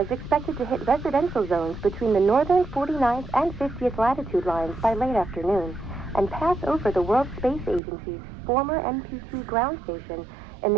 expected to hit residential zones between the northern 49th and 50th latitude lines by late afternoon and pass over the World Space Agency's former MPT ground station in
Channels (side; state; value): left; drops out; at 7.8 s